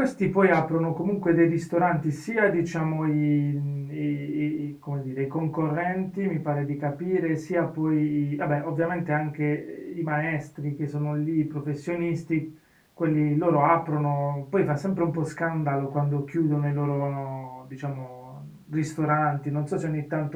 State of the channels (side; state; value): both; identical; correlation 1.00